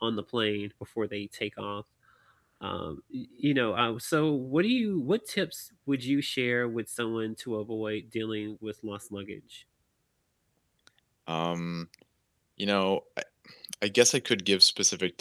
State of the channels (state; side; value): identical; both; correlation 1.00